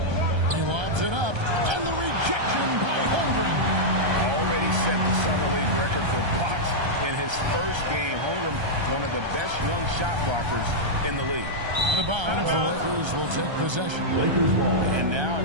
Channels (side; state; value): left; late; 1.3 ms